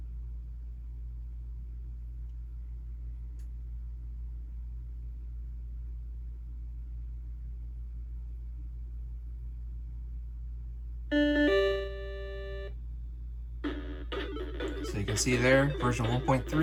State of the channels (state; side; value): identical; both; correlation 1.00